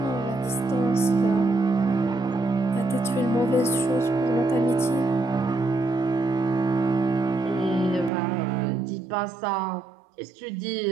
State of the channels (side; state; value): left; drops out; at 8.1 s